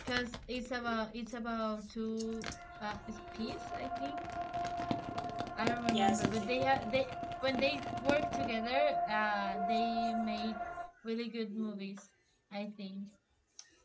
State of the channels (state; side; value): identical; both; correlation 1.00